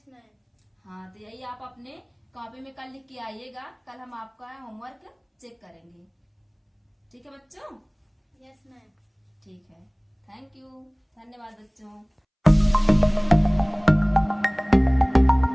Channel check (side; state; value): both; identical; correlation 1.00